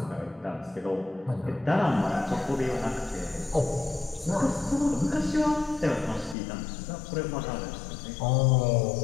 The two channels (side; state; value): right; drops out; at 6.4 s